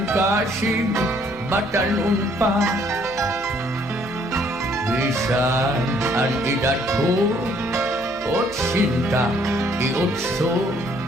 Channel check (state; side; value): noise; left; hum, 21 dB below the sound